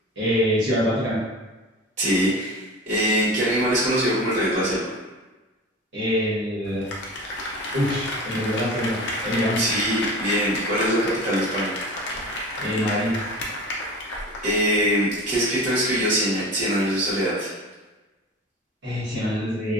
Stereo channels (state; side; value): normal; both; correlation 0.34